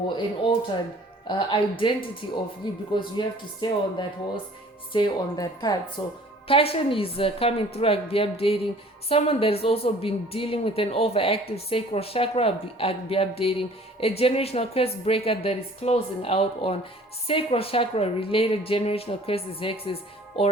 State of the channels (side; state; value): both; normal; correlation 0.51